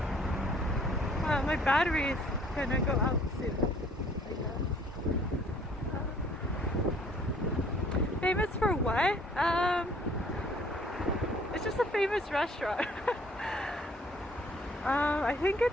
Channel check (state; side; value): normal; both; correlation 0.58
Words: Oh, my battery is gonna go out soon, I guess. Famous for what? It's just a famous restaurant. I think